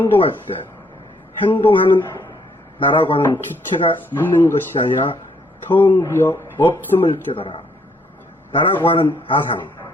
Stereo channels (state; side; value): normal; both; correlation 0.69